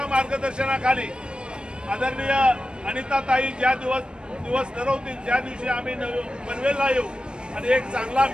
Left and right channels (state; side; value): late; left; 0.053 ms